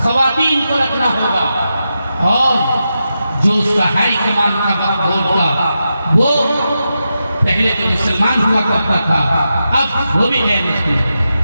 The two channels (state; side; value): inverted; both; correlation -0.88